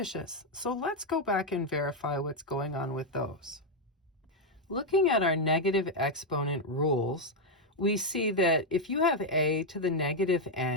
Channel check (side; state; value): both; normal; correlation 0.02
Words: So let's go back and verify what's going on with those. Looking at our negative exponent rules, we see that if you have a to the negative